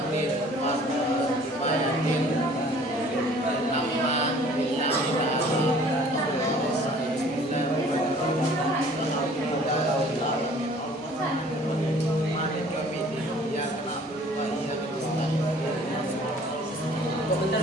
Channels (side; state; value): both; normal; correlation 0.52